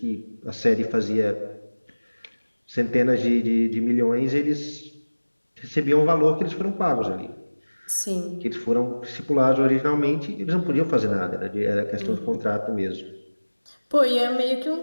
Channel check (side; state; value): both; inverted; correlation -1.00